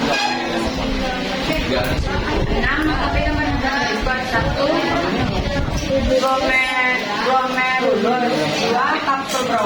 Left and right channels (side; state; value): both; identical; correlation 1.00